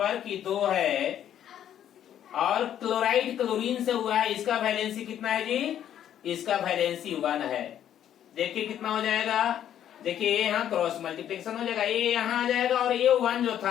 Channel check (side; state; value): right; quieter; 10.4 dB